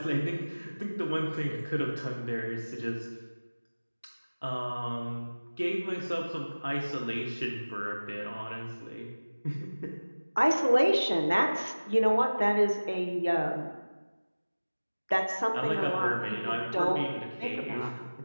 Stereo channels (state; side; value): inverted; both; correlation -1.00